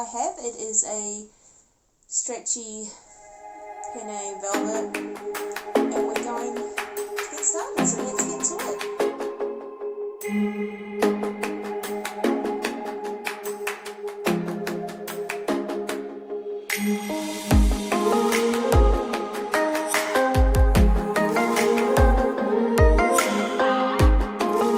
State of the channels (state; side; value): identical; both; correlation 1.00